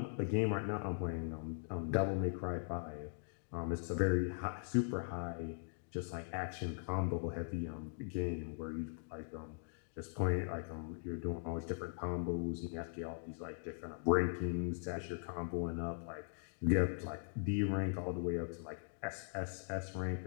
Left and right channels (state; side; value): silent; right; digital silence